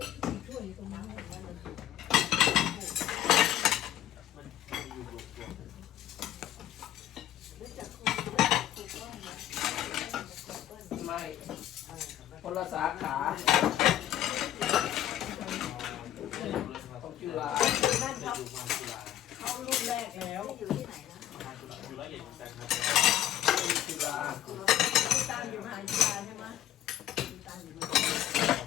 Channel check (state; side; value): quieter; right; 12.3 dB